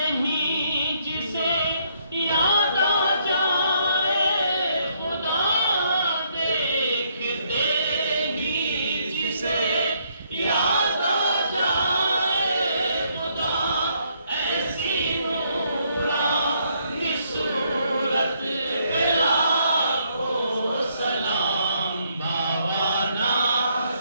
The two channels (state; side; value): inverted; both; correlation -0.71